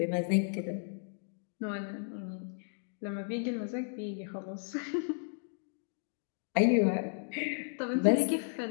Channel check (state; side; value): silent; right; digital silence